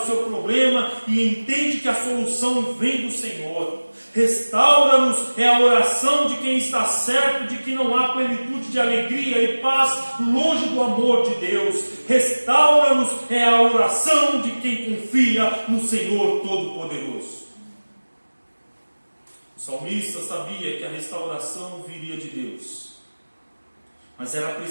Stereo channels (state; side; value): inverted; both; correlation -1.00